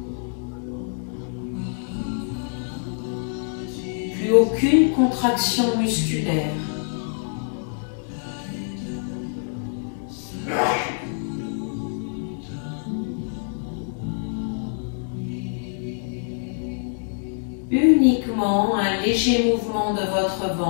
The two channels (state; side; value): silent; right; digital silence